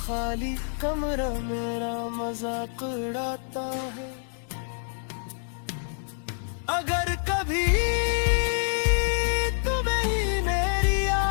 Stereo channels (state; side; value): silent; right; digital silence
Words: कमरा मेरा मजाक उड़ाता है। अगर कभी तुम्हें ही मेरी